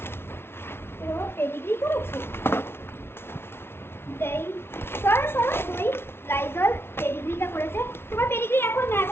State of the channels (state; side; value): late; right; 0.12 ms